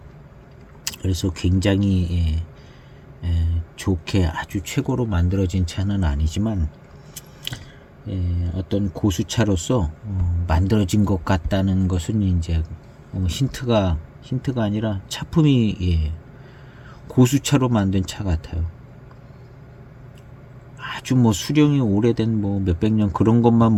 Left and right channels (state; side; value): identical; both; correlation 1.00